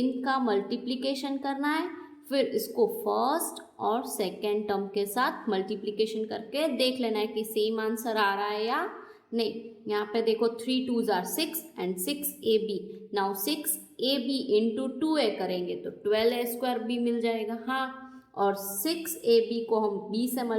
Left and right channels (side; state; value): both; identical; correlation 1.00